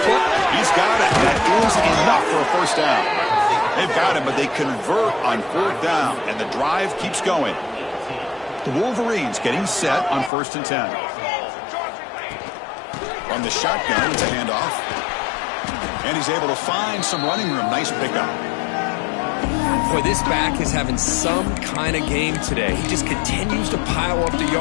He's got it. That is enough for a first down. They've got him, but they convert on fourth down, and the drive keeps going. The Wolverines getting set on 1st and 10. On the shotgun, it's a handoff. And he's able to find some running room. Nice pickup. Boy, this back is having some kind of game today. He just continues to pile up the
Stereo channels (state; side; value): drops out; right; at 10.3 s